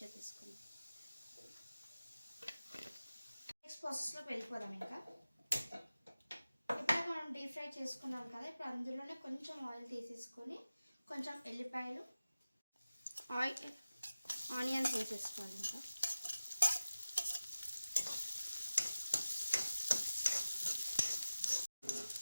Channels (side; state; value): both; inverted; correlation -0.97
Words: చేసేసుకుందాం. నెక్స్ట్ ప్రాసెస్లోకి వెళ్ళిపోదాం. ఇంకా ఇప్పుడు మనం డీప్ ఫ్రై చేసుకున్నాం కదా, ఇప్పుడు అందులోనే కొంచెం ఆయిల్ తీసేసుకొని కొంచెం ఎల్లిపాయలు, ఆనియన్స్ వేసేసుకోవాలి. ఇంకా